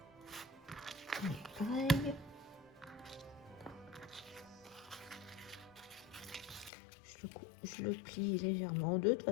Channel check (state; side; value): drops out; right; at 6.7 s